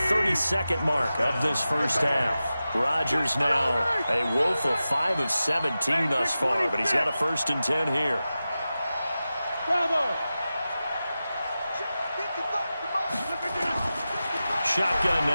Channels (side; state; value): both; inverted; correlation -0.94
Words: 32nd mark of this first half. Rodgers now a woeful 5 of 17 thus far, but he's got a 1st and 10 here. Shotgun